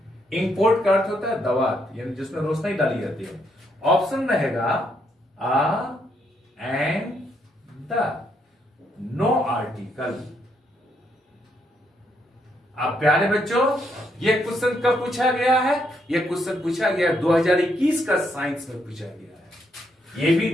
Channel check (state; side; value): normal; both; correlation 0.75